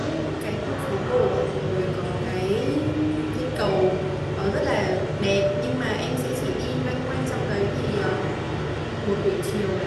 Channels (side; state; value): both; identical; correlation 1.00